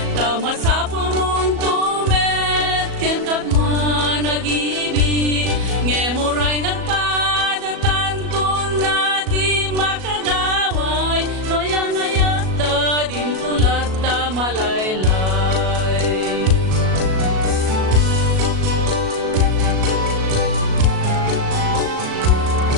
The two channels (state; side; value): late; left; 37 ms